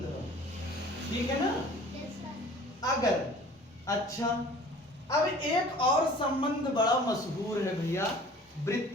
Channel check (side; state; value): both; normal; correlation 0.47